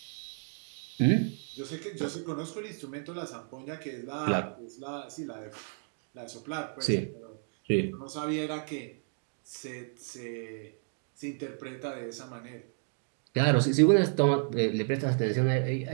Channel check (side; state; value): left; silent; 56 dB below the other